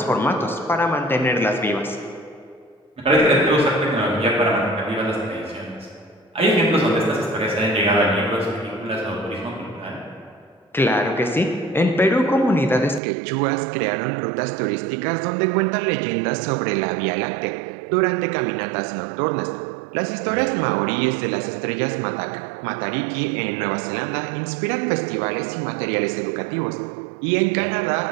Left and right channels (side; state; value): left; drops out; at 13.0 s